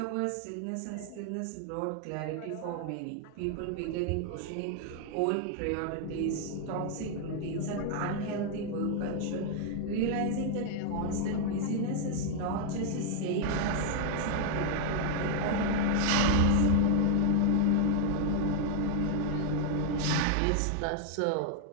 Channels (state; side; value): different; both; correlation 0.00